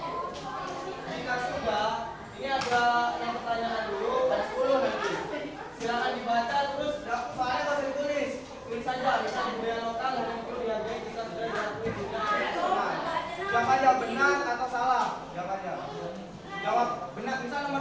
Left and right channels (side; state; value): both; identical; correlation 1.00